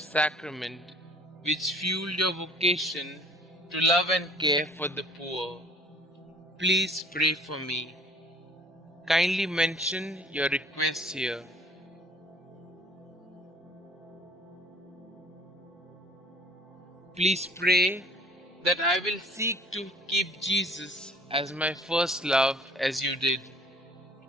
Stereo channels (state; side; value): normal; both; correlation 0.53